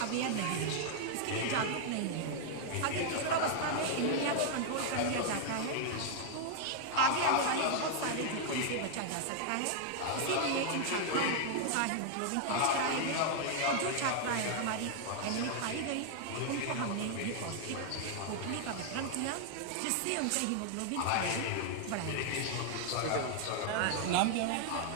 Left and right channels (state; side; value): different; both; correlation 0.00